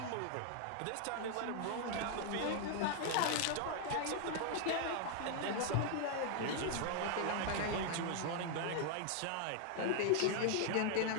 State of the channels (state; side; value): different; both; correlation 0.00